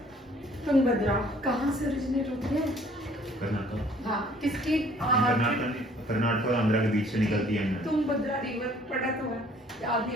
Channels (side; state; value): both; normal; correlation 0.57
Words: तुंगभद्रा कहाँ से ओरिजिनेट होती है? कर्नाटक। हाँ, किसकी? कर्नाटक और आंध्र के बीच से निकलती है। तुंगभद्रा रिवर पढ़ा तो है, याद